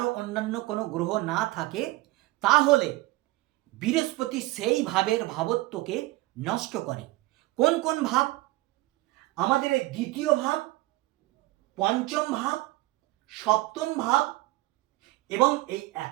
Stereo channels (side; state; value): left; quieter; 19.3 dB